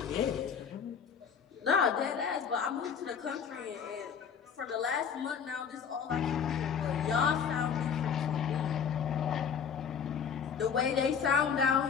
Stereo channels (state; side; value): quieter; right; 7.1 dB